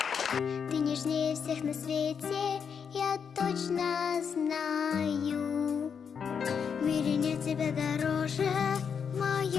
Ты нежнее всех на свете, я точно знаю. В мире нет тебя дороже, в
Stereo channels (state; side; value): quieter; right; 6.8 dB